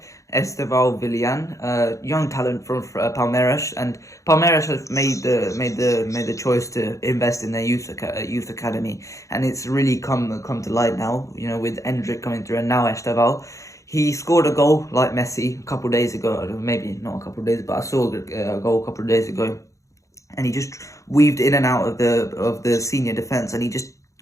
Esteval Villan, young talent from Palmeiras, and Palmeiras have made the choice to invest in their youth academy, and it's really come to light now. With Endrick coming through, and now Esteval. He scored a goal like Messi a couple of days ago, maybe not a couple of days, but I saw a goal a couple of days ago, and he just weaved in and out of the senior defense, and he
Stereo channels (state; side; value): late; right; 0.15 ms